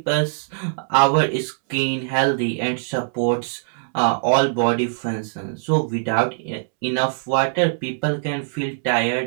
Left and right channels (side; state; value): left; silent; 64 dB below the other